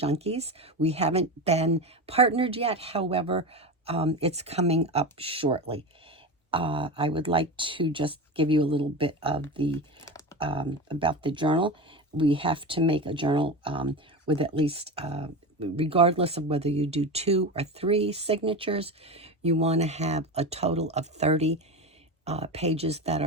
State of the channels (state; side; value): normal; both; correlation 0.23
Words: We haven't been partnered yet, however, it's coming up shortly. I would like to just give you a little bit of the about the journal. We have to make a journal with at least, regardless of whether you do 2 or 3 signatures, you want to have a total of 30 pages that